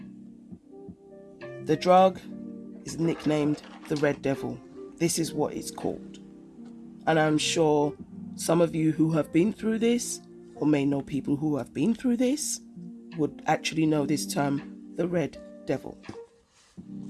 The drug is nicknamed the Red Devil. This is what it's called. And I'm sure some of you who have been through this, or may know people who have been through this, would actually know this term, the Red Devil.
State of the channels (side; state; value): both; identical; correlation 1.00